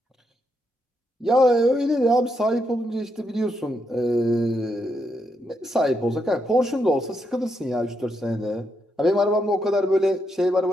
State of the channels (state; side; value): normal; both; correlation 0.80